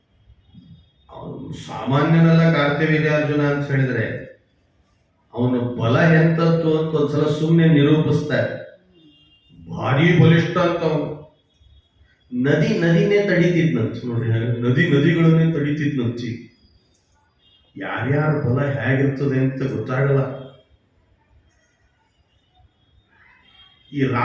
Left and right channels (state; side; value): identical; both; correlation 1.00